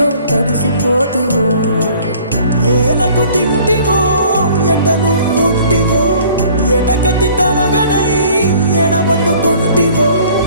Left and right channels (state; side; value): inverted; both; correlation -0.53